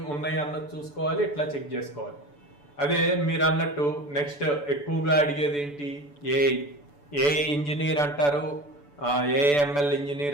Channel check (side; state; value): right; late; 6.9 ms